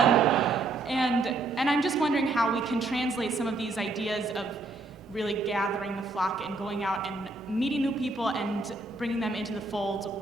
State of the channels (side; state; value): left; quieter; 3.3 dB